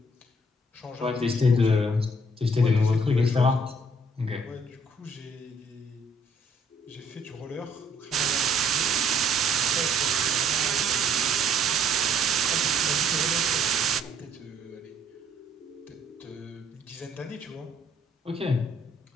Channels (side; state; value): both; normal; correlation 0.64